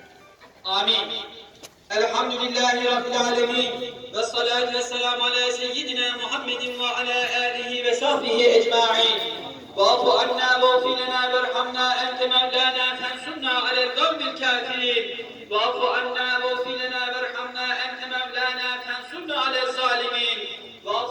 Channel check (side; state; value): both; identical; correlation 1.00